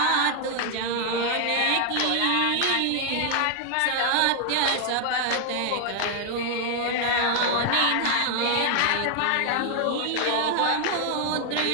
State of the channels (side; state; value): both; different; correlation 0.00